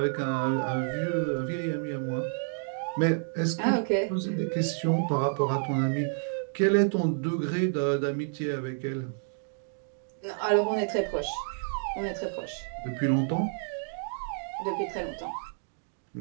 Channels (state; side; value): silent; left; digital silence